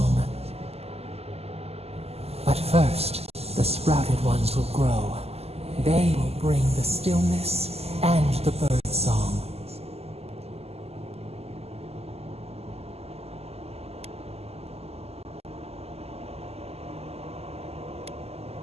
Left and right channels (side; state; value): left; late; 0.29 ms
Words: But first, the sprouted ones will grow. They will bring the stillness and the bird song.